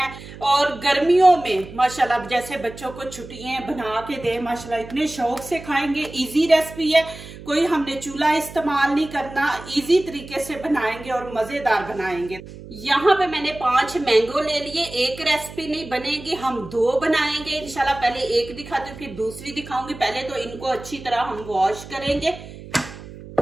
और गर्मियों में माशाल्लाह जैसे बच्चों को छुट्टियां बना के दे, माशाल्लाह इतने शौक से खाएंगे। इजी रेसिपी है, कोई हमने चूल्हा इस्तेमाल नहीं करना, इजी तरीके से बनाएंगे और मजेदार बनाएंगे। यहाँ पे मैंने 5 मैंगो ले लिए। एक रेसिपी नहीं बनेगी, हम 2 बनाएंगे इंशाल्लाह। पहले एक दिखाती हूँ फिर दूसरी दिखाऊंगी। पहले तो इनको अच्छी तरह हम वॉश करेंगे।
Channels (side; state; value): right; noise; hum, 15 dB below the sound